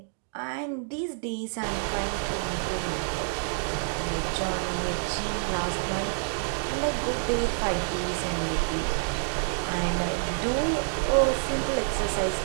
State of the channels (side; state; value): left; silent; digital silence